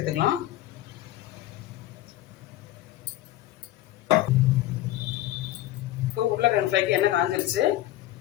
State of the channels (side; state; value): right; quieter; 14.8 dB